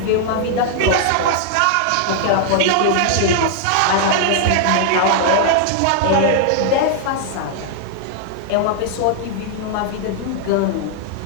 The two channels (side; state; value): both; different; correlation -0.01